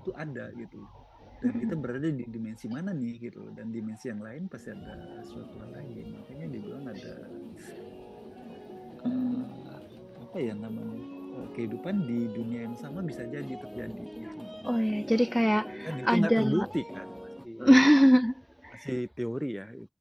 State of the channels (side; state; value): both; identical; correlation 1.00